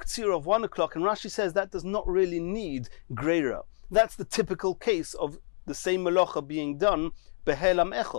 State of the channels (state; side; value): silent; right; 56 dB below the other